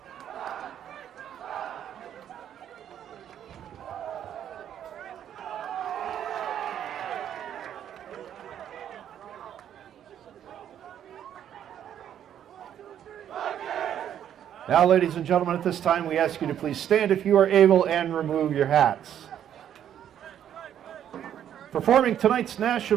Now, ladies and gentlemen, at this time, we ask you to please stand if you are able and remove your hats. Performing tonight's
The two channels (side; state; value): left; quieter; 10.0 dB